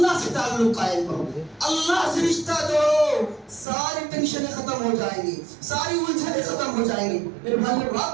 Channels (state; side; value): drops out; left; at 3.7 s